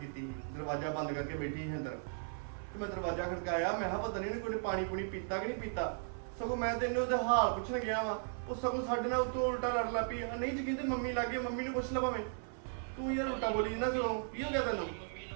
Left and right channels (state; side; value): silent; left; 53 dB below the other